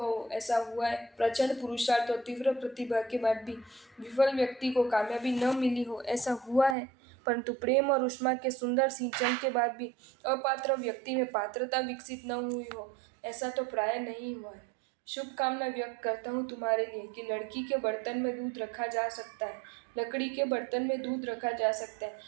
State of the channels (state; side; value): drops out; left; at 6.8 s